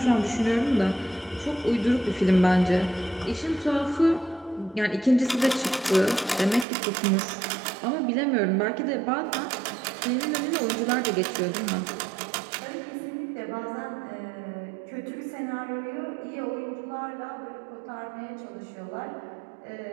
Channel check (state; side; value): drops out; left; at 6.7 s